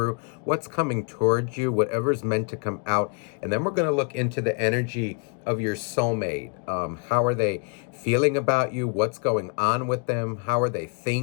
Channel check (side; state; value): right; quieter; 34.1 dB